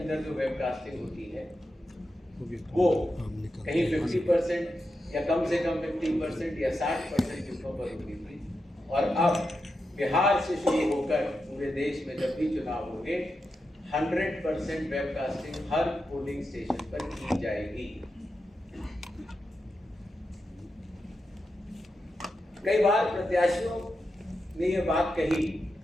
जो वेबकास्टिंग होती है, वो कहीं 50% या कम से कम 50% या 60% बूथों पर होती थी, और अब बिहार से शुरू होकर पूरे देश में जब भी चुनाव होंगे 100% वेबकास्टिंग हर पोलिंग स्टेशन पर की जाएगी। कई बार प्रत्याशियों ने यह बात कही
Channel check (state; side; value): normal; both; correlation 0.88